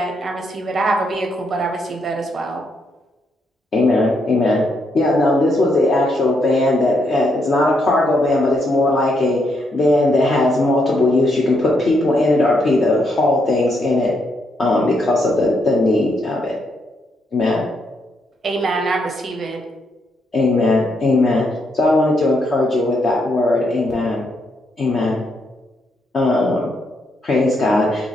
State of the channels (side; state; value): both; normal; correlation 0.77